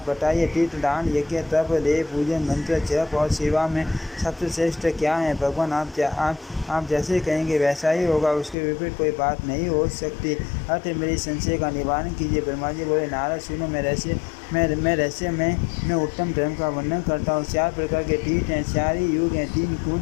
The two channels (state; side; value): drops out; right; at 8.6 s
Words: बताइए, तीर्थ दान यज्ञ तप देव पूजन मंत्र जप और सेवा में सबसे श्रेष्ठ क्या है। भगवान आप जैसे कहेंगे वैसा ही होगा, उसके विपरीत कोई बात नहीं हो सकती। अर्थ मेरी संशय का निवारण कीजिए। ब्रह्मा जी बोले, नारद सुनो, मैं रहस्य में उत्तम धर्म का वर्णन करता हूँ। 4 प्रकार के तीर्थ हैं, 4 ही युग हैं, 3